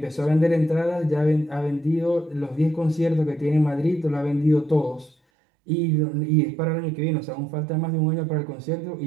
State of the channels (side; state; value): left; drops out; at 5.2 s